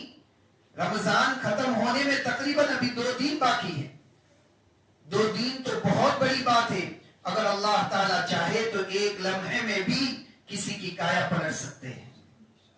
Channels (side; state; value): both; identical; correlation 1.00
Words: رمضان ختم ہونے میں تقریباً ابھی 2 دن باقی ہے. 2 دن تو بہت بڑی بات ہے. اگر اللہ تعالیٰ چاہے تو ایک لمحے میں بھی کسی کی کایا پلٹ سکتے ہیں.